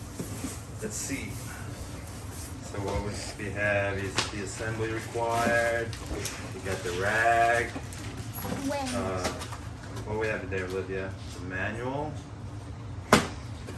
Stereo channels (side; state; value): both; identical; correlation 1.00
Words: let's see. So what we have is the assembly required. We got the rag. What we have today, Olivia? The manual.